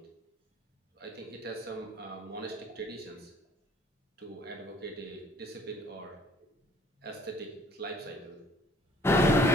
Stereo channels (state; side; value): normal; both; correlation 0.57